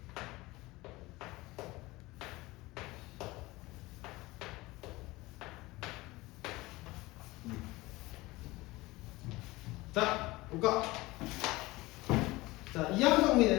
자, 볼까? 자, 이항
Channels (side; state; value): right; quieter; 20.5 dB